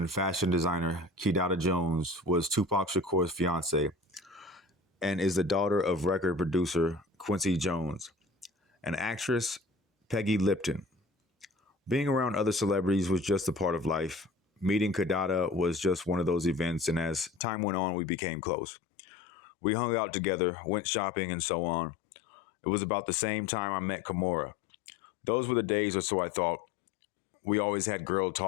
fashion designer Kidada Jones was Tupac Shakur's fiancée and is the daughter of record producer Quincy Jones. An actress, Peggy Lipton. Being around other celebrities was just a part of life. Meeting Kidada was just one of those events, and as time went on, we became close. We hung out together, went shopping, and so on. It was about the same time I met Kimora. Those were the days, or so I thought. We always had girl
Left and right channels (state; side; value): drops out; right; at 17.4 s